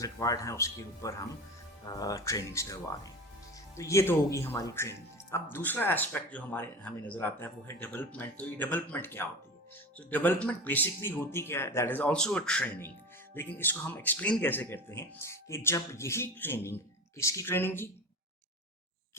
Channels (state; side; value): normal; both; correlation 0.31